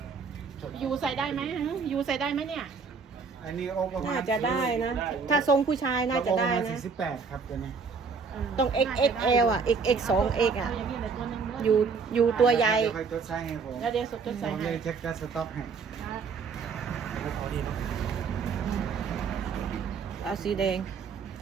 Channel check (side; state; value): left; quieter; 5.2 dB